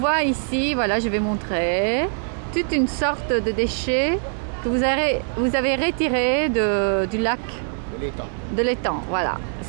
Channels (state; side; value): silent; left; 64 dB below the other